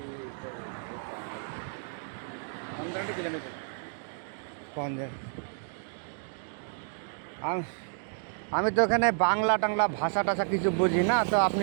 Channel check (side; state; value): left; silent; digital silence